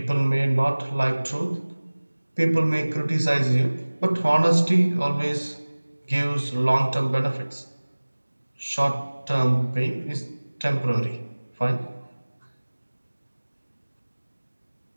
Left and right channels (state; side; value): inverted; both; correlation -1.00